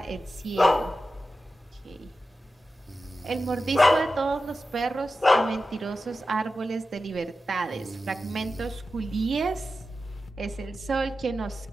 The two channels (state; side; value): normal; both; correlation 0.92